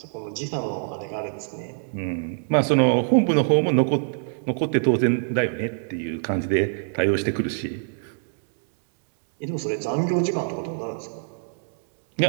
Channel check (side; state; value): left; silent; digital silence